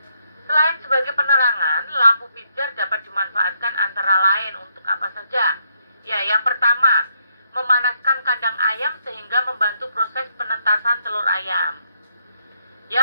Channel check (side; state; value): both; inverted; correlation -0.76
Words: Selain sebagai penerangan, lampu pijar dapat dimanfaatkan antara lain untuk apa saja. Ya, yang pertama, memanaskan kandang ayam sehingga membantu proses penetasan telur ayam.